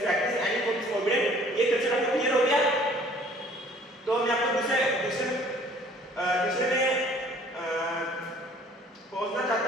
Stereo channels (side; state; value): both; normal; correlation 0.55